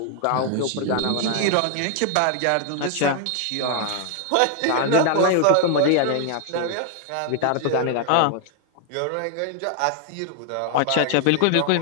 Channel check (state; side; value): different; both; correlation 0.00